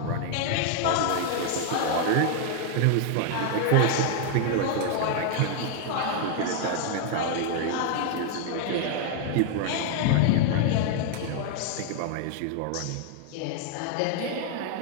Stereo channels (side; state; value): both; different; correlation 0.00